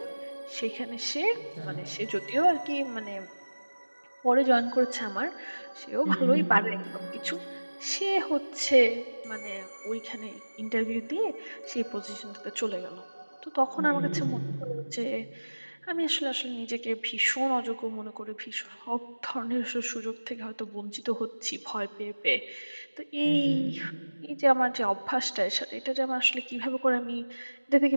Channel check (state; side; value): inverted; both; correlation -1.00